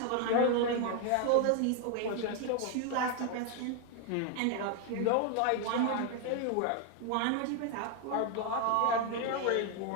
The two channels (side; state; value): both; different; correlation 0.01